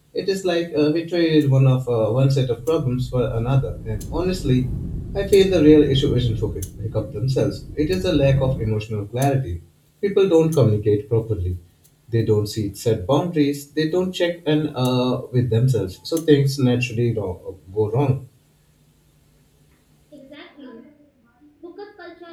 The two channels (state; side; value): identical; both; correlation 1.00